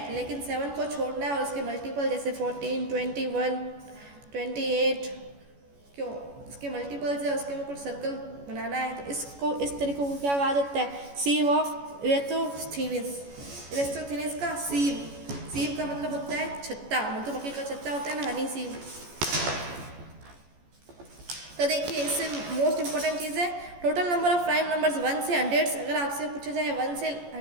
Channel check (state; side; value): late; left; 14 ms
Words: लेकिन 7 को छोड़ना है और उसके मल्टीपल जैसे 14, 21, 28 क्यों उसके मल्टीपल्स है उसके ऊपर सर्कल बनाना है। तो इसको इस तरीके को क्या कहा जाता है, सीव ऑफ इरेथोस्थीनिस। इरेथोस्थीनिस का सीव, सीव का मतलब होता है छत्ता, मधुमक्खी का छत्ता होता है ना, हनी सीव। तो देखिए इससे मोस्ट इंपॉर्टेंट चीज़ है total number of prime numbers 1 से 100। अगर आपसे पूछा जाए 1 से